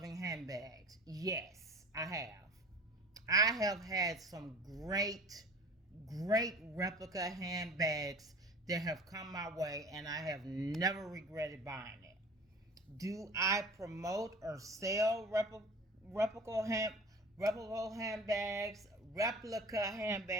handbags. Yes, I have. I have had some great replica handbags that have come my way, and I have never regretted buying it. Do I promote or sell replica hand replica handbags, replica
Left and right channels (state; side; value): normal; both; correlation 0.41